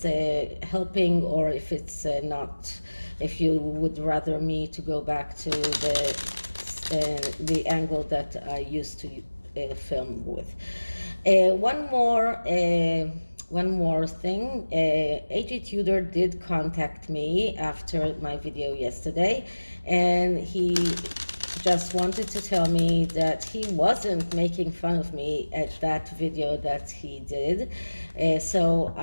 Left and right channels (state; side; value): inverted; both; correlation -1.00